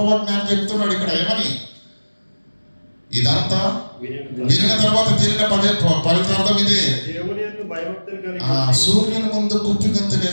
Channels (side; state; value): both; inverted; correlation -1.00